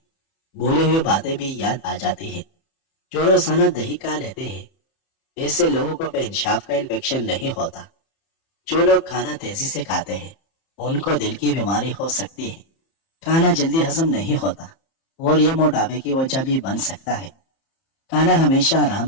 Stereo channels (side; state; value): right; late; 30 ms